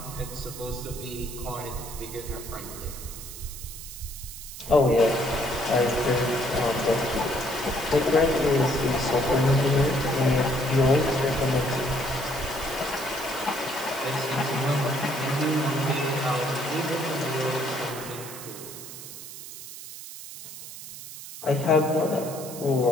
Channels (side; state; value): right; noise; hiss, 12 dB below the sound